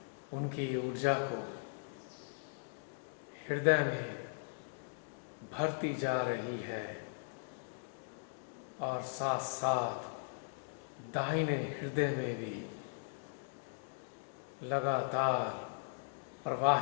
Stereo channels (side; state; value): right; silent; digital silence